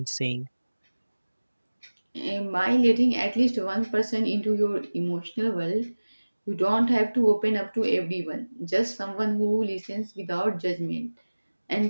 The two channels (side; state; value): both; inverted; correlation -1.00